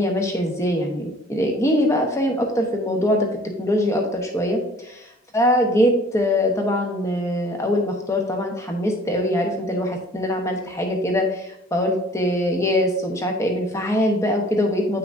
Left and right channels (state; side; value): normal; both; correlation 0.52